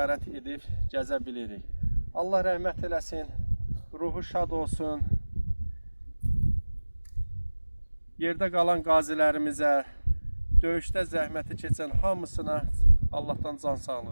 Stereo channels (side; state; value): both; inverted; correlation -1.00